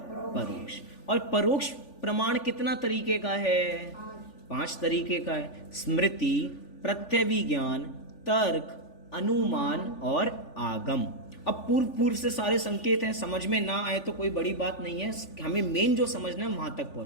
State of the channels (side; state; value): right; late; 3.4 ms